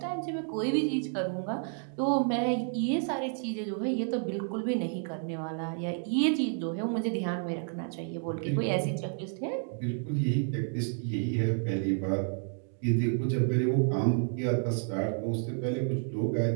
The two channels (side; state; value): left; silent; 57 dB below the other